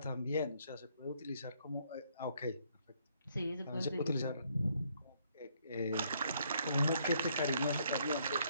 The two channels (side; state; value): both; inverted; correlation -0.69